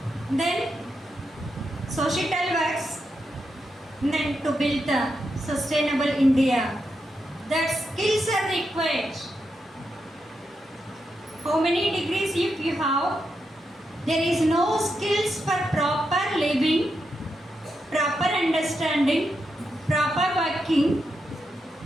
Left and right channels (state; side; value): normal; both; correlation 0.85